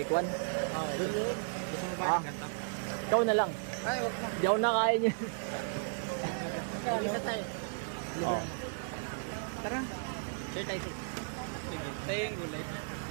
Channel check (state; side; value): silent; left; digital silence